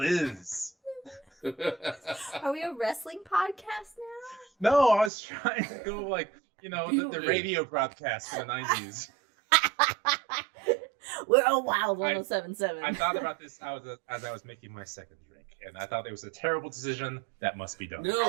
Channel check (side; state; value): left; drops out; at 5.1 s